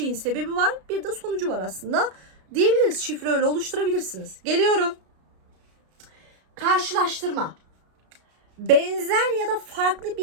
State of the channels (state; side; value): late; left; 33 ms